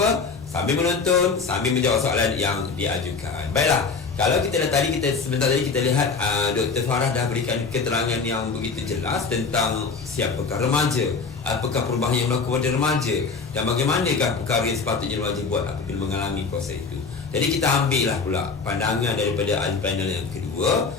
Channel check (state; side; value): quieter; right; 4.8 dB